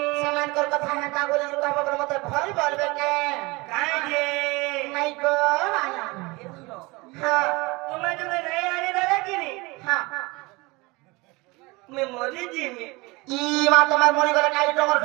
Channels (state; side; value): quieter; left; 24.3 dB